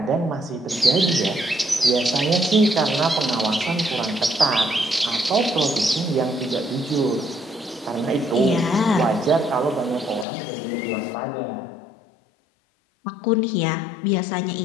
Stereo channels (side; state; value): right; drops out; at 10.2 s